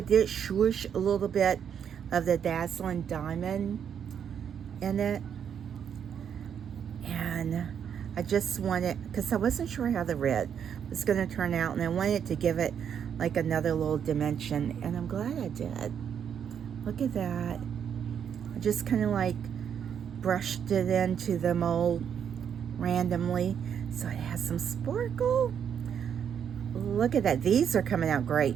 did swoosh a little bit of the Dazzling Diamond in it. And I just wanted, because I wasn't sure how the red was going to turn out. And I wanted to give it like another little dimension. And I'm glad I did. Look at that. I just kind of like brushed it into the mold randomly so it has some sparkle. Look at that. These are coming out great.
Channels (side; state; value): left; quieter; 8.2 dB